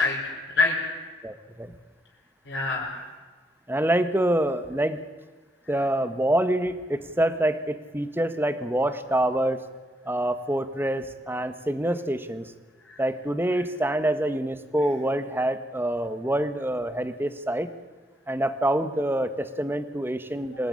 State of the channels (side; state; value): both; normal; correlation 0.77